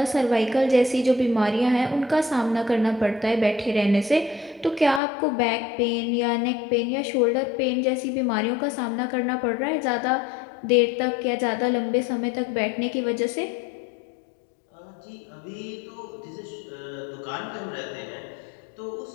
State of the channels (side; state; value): right; drops out; at 5.0 s